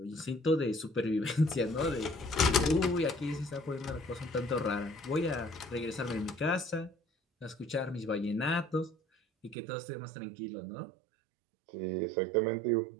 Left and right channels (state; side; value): drops out; left; at 9.6 s